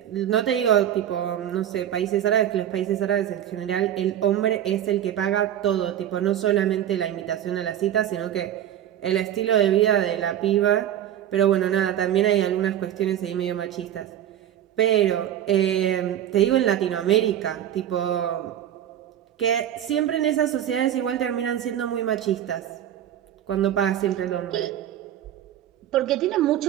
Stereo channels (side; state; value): left; quieter; 10.9 dB